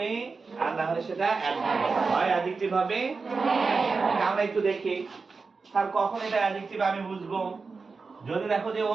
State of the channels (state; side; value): quieter; left; 4.5 dB